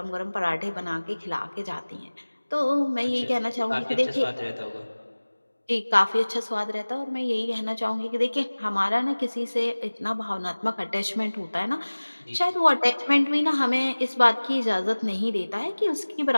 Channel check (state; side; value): inverted; both; correlation -1.00